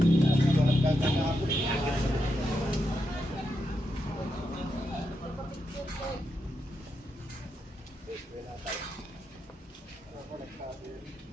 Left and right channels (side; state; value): both; normal; correlation 0.84